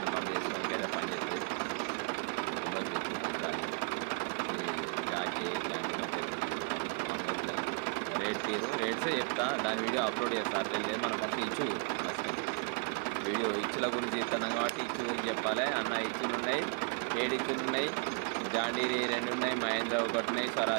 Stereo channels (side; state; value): left; quieter; 37.8 dB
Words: పని చేసుకోవడానికి అయితే పని చేస్తుంది. జాకీ ఇట్లాంటి మంచిగా మామూలు రేట్సే చెప్తా, దాని వీడియో అప్లోడ్ చేస్తా. అట్లేం లేదు. మనం ఫస్ట్ ఇచ్చు వీడియో ఇచ్చుల గురించి చెప్తున్నాం కాబట్టి ఇచ్చు గురించి చెప్పాలి అన్న. ఇచ్చులు ఉన్నాయి, 7 ఇచ్చులు ఉన్నాయి, జాండీరి 2 ఉన్నాయి, మహేంద్ర 1 ఉన్నాయి,